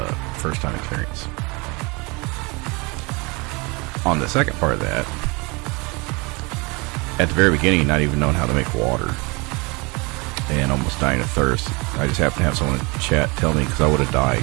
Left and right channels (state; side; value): quieter; left; 27.8 dB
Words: first time experience. on the second part of that, at the very beginning, not even knowing how to make water and almost dying of thirst, I just happened to have someone in chat tell me, because I would have